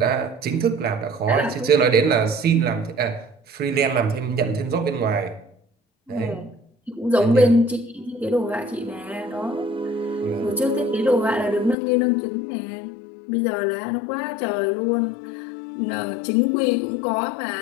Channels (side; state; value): right; drops out; at 11.8 s